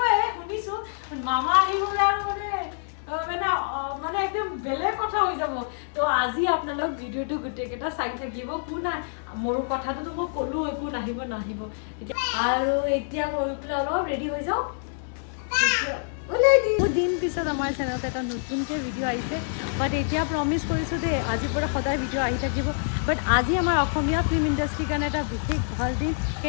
শুনিছো মামা আহিব আৰু মানে একদম বেলেগ কথা হৈ যাব তো আজি আপোনালোক ভিডিওটো গুটেকেটা চাই থাকিব কোনা মোৰ কথাটো তো মই কলো একো নাহিব আৰু এতিয়া গৈ পেলাই অলপ ৰেডি হৈ যাও বহুত দিন পিছত আমাৰ চেনেলত এটা নতুনকৈ ভিডিঅ' আহিছে বাট এতিয়া প্ৰমিছ কৰিছোঁ দেই আজিৰ পৰা সদায় ভিডিঅ' আহি থাকিব বাট আজি আমাৰ অসমীয়া ফিল্ম ইণ্ডাষ্ট্ৰীৰ কাৰণে এটা বিশেষ ভাল দিন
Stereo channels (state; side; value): silent; right; 61 dB below the other